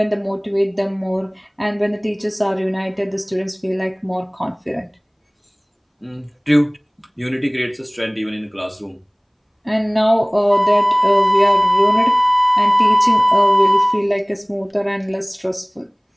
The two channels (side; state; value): both; identical; correlation 1.00